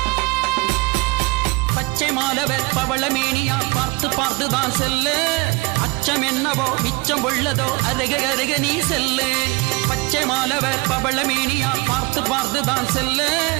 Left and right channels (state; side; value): quieter; left; 26.9 dB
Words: மாலவர் பவளமேனியா பார்த்து பார்த்துதான் செல்லு, அச்சம் என்னவோ மிச்சம் உள்ளதோ அருக அருக நீ செல்லு. பச்சை மாலவர் பவளமேனியா பார்த்து பார்த்துதான் செல்லு,